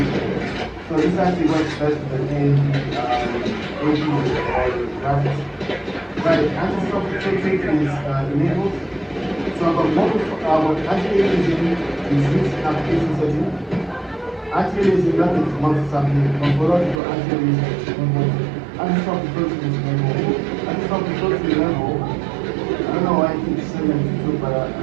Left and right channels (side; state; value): left; drops out; at 17.0 s